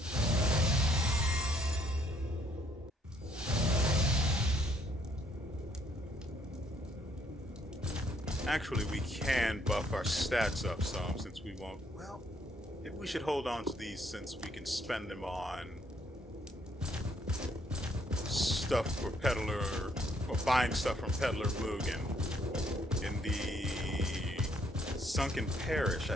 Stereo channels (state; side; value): normal; both; correlation 0.68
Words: Actually, we can buff our stats up some since we won't... Well, maybe we should hold on to these since we can spend them on stuff for Peddler, or buying stuff from Peddler Mugen in the Sunken Parish,